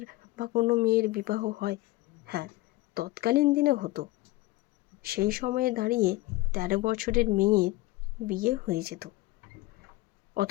বা কোনো মেয়ের বিবাহ হয়? হ্যাঁ, তৎকালীন দিনে হতো। সেই সময়ে দাঁড়িয়ে 13 বছরের মেয়ের বিয়ে হয়ে যেত,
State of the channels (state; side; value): quieter; right; 18.9 dB